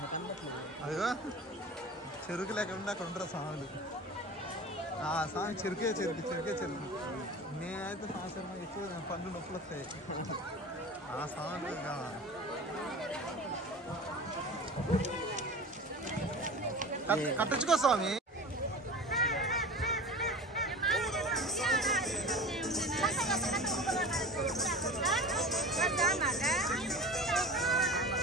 అదిగో చెరుకు లేకుండా అక్కడ ఉంటారు స్వాములు. స్వామి చెరుకే నేనైతే సంవత్సరం ఎక్కువ పండ్లు నొప్పులు వస్తాయి. ఆ స్వామి కట్టించుకో స్వామి.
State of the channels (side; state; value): both; normal; correlation 0.35